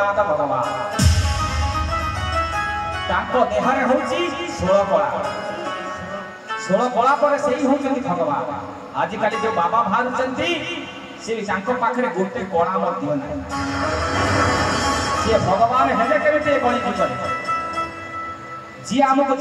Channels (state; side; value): identical; both; correlation 1.00